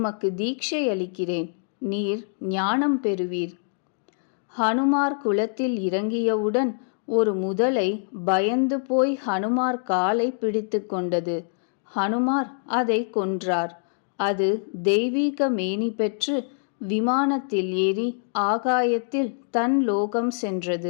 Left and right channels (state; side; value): silent; right; digital silence